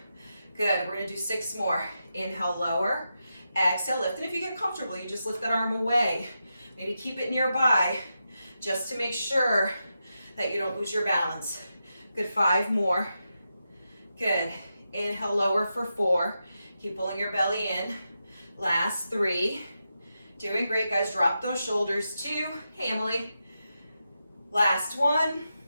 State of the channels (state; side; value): inverted; both; correlation -0.87